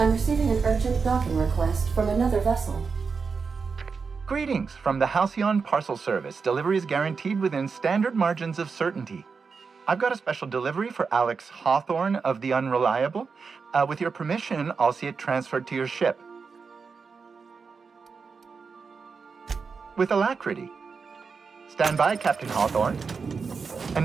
receiving an urgent docking request from another vessel. Greetings from the Halcyon Parcel Service. Delivery is guaranteed within standard margins of certainty. I've got a special delivery for Alex Hawthorne of the Unreliable. With your permission, I'll see it transferred to your ship. With alacrity. Stand by, Captain Hawthorne.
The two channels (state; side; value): quieter; left; 5.2 dB